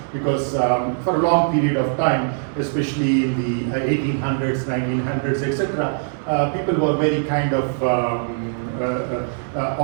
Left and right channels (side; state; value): left; silent; 60 dB below the other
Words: because for a long period of time, especially in the 1800s, 1900s, etc., people were very kind of